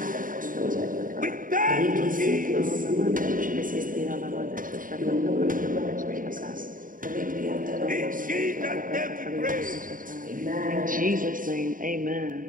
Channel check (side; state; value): left; late; 0.39 ms